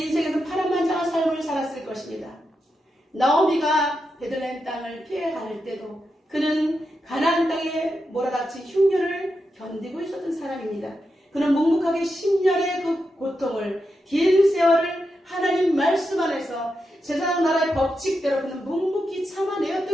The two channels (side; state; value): both; normal; correlation 0.87